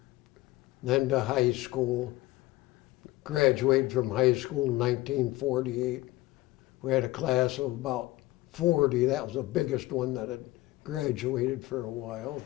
Then to high school. Graduated from high school in 1948. We had a class of about 40. That was the biggest one that had graduated for a while.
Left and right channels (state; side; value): quieter; right; 18.5 dB